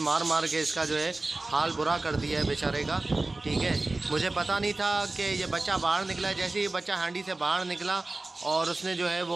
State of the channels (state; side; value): quieter; left; 3.1 dB